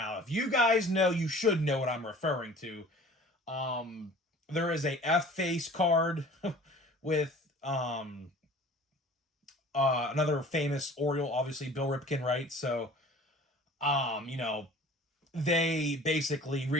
if you guys know, you should know what I'm referring to. There is a F face card with another famous Oriole, obviously Bill Ripken, right? So, they basically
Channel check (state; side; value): normal; both; correlation 0.46